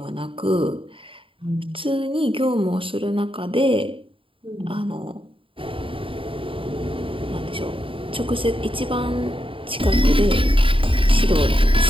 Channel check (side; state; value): left; late; 0.25 ms